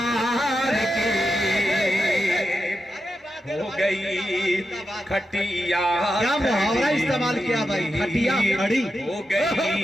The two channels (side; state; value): both; normal; correlation 0.88